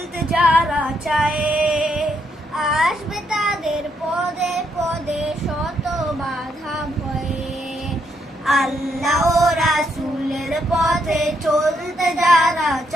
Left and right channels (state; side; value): normal; both; correlation 0.76